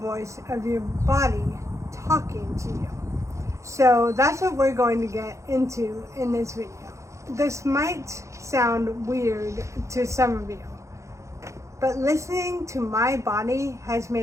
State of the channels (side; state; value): left; late; 0.15 ms